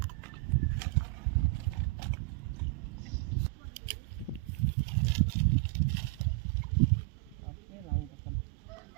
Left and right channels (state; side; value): quieter; left; 23.3 dB